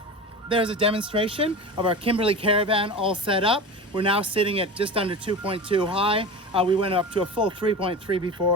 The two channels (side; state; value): both; normal; correlation 0.30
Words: There's a demonstration of our Kimberley Caravan all set up. We're now sitting at just under 2.2 high. We went up to a full 3.3